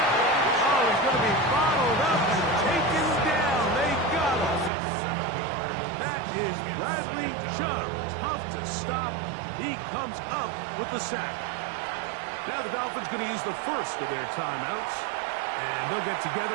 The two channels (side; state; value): left; drops out; at 4.7 s